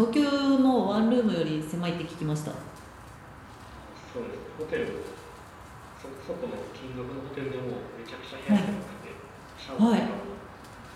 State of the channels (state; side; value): identical; both; correlation 1.00